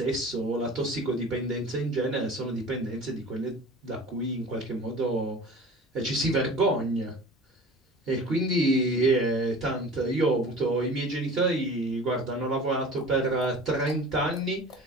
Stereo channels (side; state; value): both; normal; correlation 0.40